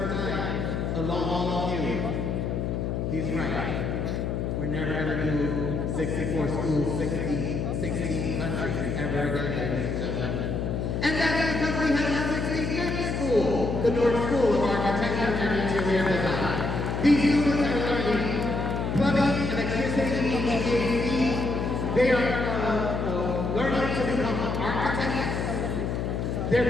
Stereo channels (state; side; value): noise; left; hum, 1 dB below the sound